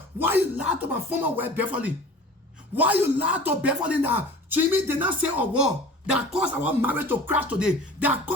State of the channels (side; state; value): both; normal; correlation 0.42